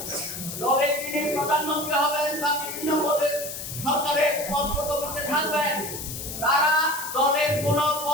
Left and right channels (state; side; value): noise; left; hiss, 8 dB below the sound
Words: দলের যিনি প্রধানমন্ত্রী হবেন বা বিভিন্ন পদে সরকারের পদ পদবিতে থাকবেন, তারা দলের কোন